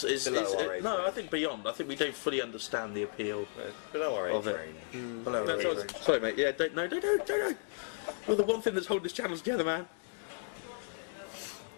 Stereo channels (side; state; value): right; silent; digital silence